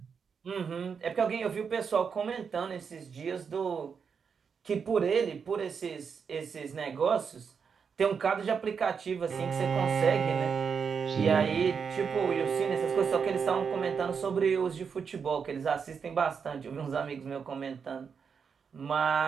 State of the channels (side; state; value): left; quieter; 6.2 dB